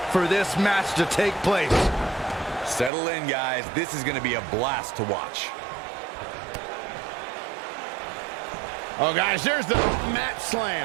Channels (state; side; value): drops out; left; at 2.9 s